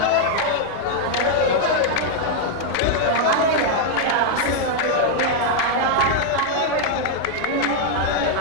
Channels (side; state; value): both; different; correlation 0.00